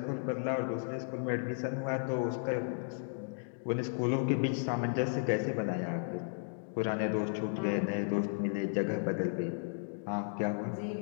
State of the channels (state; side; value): silent; right; digital silence